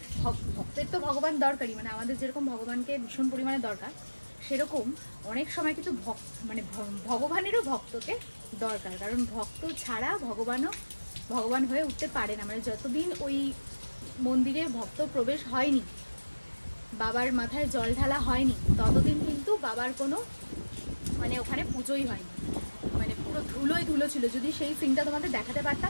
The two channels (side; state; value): both; inverted; correlation -1.00